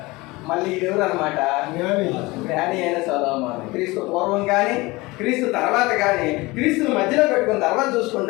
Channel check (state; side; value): quieter; right; 22.3 dB